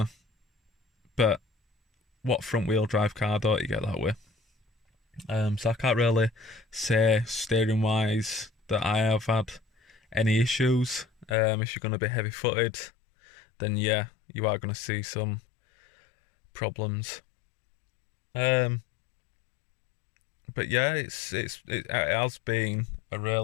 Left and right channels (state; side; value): drops out; right; at 11.4 s